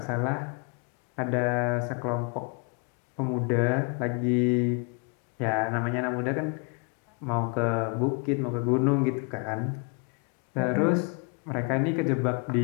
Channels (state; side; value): quieter; right; 35.8 dB